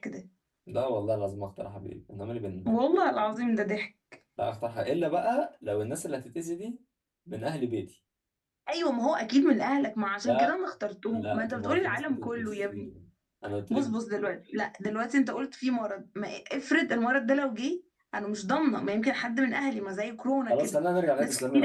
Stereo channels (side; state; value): both; identical; correlation 1.00